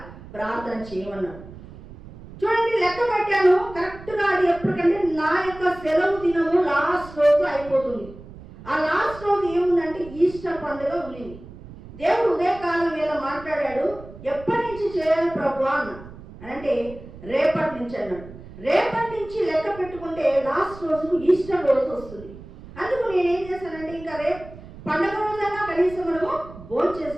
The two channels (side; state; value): right; noise; rumble, 17 dB below the sound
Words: ప్రార్థన చేయమన్నాడు. చూడండి, లెక్క పెట్టాను కరెక్ట్గా. అది ఎప్పటికంటే నా యొక్క సెలవు దినము లాస్ట్ రోజు అయిపోతుంది. ఆ లాస్ట్ రోజు ఏముందంటే ఈస్టర్ పండుగ ఉండింది. దేవుడు ఉదయకాలం వేళ మాట్లాడాడు. ఎప్పటి నుంచి చేయాలి ప్రభు అన్న అంటే రేపటి నుంచి అన్నాడు. రేపటి నుంచి లెక్క పెట్టుకుంటే లాస్ట్ రోజు ఈస్టర్ రోజు వస్తుంది. అందుకు నేనేం చేశానంటే, ఇంకా రేపు పండుగ రోజైనా కనీసం మనము భోజనం